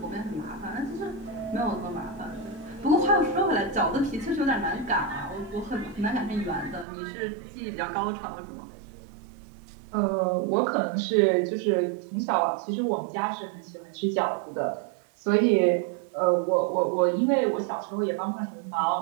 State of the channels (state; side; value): drops out; left; at 6.9 s